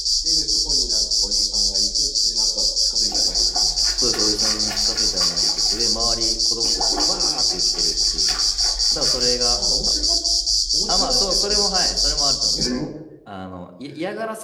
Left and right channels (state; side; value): identical; both; correlation 1.00